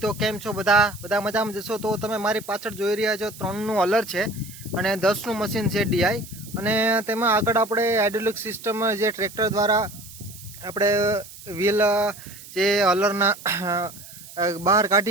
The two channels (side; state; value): right; noise; hiss, 17 dB below the sound